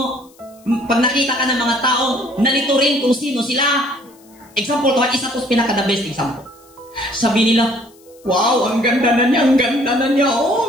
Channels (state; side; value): noise; left; hiss, 29 dB below the sound